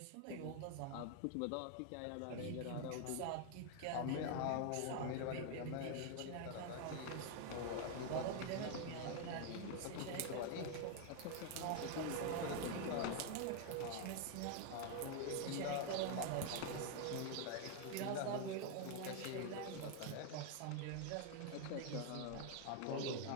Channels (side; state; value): both; different; correlation 0.01